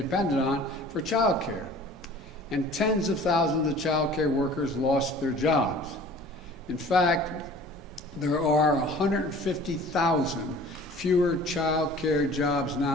on for child care, and tens of thousands of child care workers lost their jobs. In fact, there are 150,000 fewer child care jobs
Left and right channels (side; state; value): both; normal; correlation 0.47